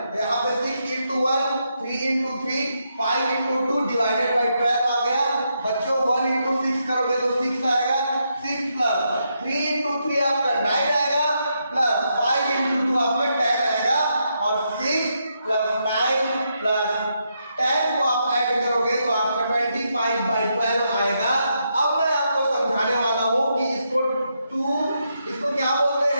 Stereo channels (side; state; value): both; inverted; correlation -0.81